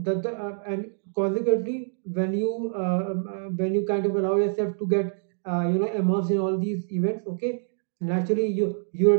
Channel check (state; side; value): silent; left; digital silence